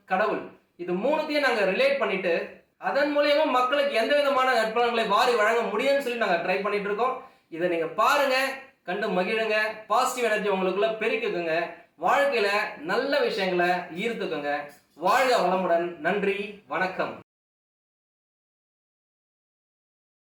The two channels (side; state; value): both; identical; correlation 1.00